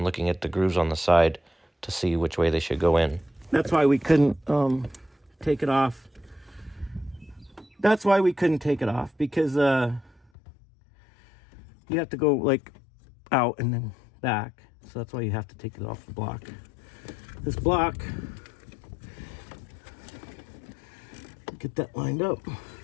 looking at the grooves on the side to see which way they should go in. That's why we couldn't take it off. That's why we couldn't take it off, because you have to go like out and then back. So that's why you have to take it off the block. This block, get that lined up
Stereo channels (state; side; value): drops out; right; at 10.2 s